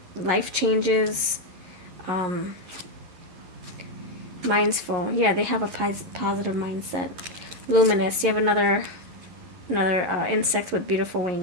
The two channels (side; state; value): left; late; 11 ms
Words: life changes. Mind's full. Yeah, they have a positive mindset. Luminous. You have another insect with beautiful